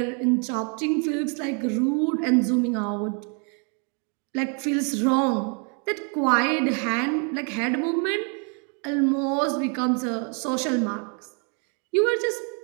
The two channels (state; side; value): quieter; left; 38.3 dB